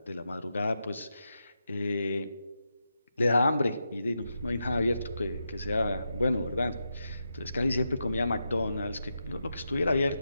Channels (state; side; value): inverted; both; correlation -0.87